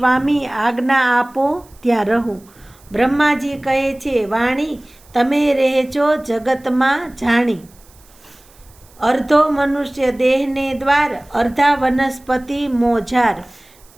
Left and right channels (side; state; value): right; noise; hiss, 28 dB below the sound